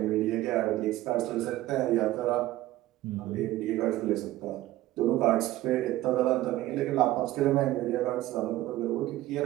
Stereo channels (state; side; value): quieter; left; 15.7 dB